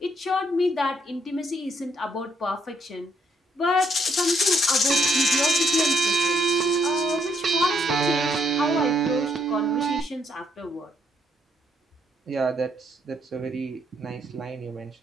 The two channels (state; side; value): normal; both; correlation 0.71